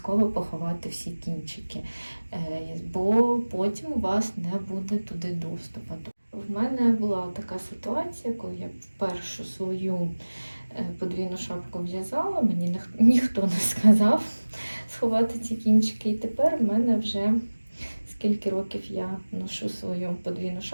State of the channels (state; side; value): inverted; both; correlation -1.00